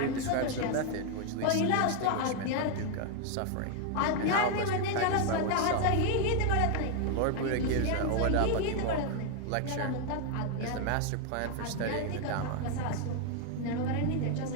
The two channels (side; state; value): both; different; correlation 0.00